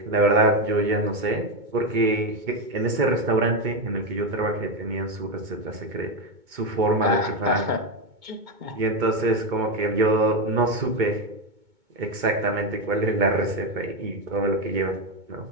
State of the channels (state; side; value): late; left; 2.2 ms